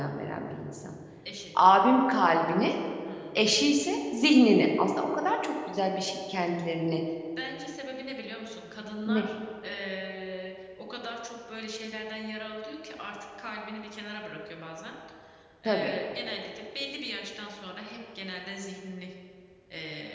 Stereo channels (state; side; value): identical; both; correlation 1.00